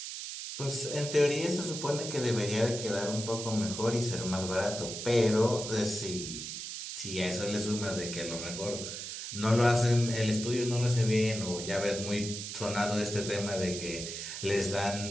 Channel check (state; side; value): noise; right; hiss, 7 dB below the sound